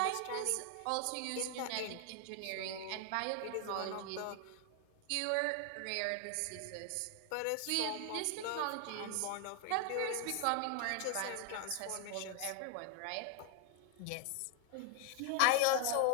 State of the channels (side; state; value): both; different; correlation 0.00